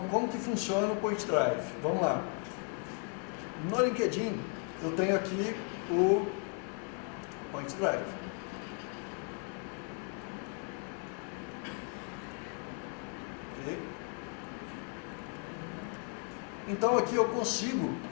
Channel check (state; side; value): quieter; right; 38.9 dB